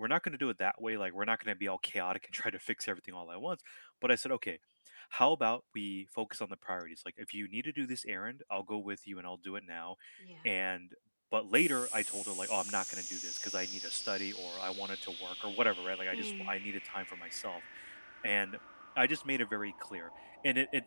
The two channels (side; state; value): both; inverted; correlation -1.00